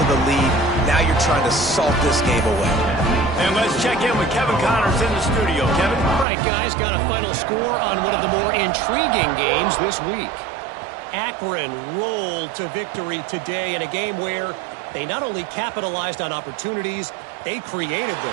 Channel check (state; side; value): drops out; left; at 6.2 s